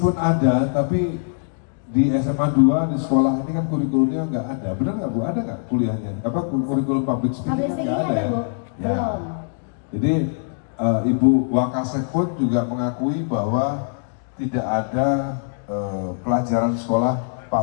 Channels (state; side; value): silent; right; digital silence